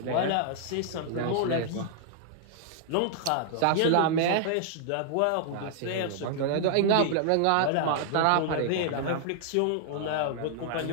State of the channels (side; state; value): both; different; correlation -0.01